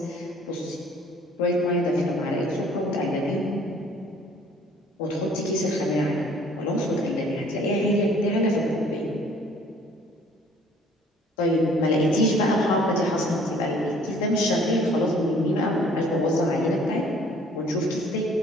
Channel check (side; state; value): both; normal; correlation 0.56